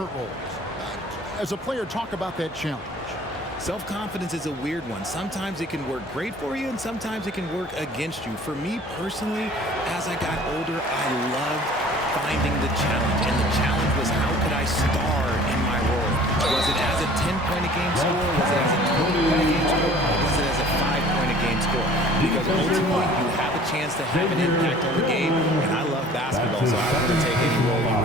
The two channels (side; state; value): both; normal; correlation 0.49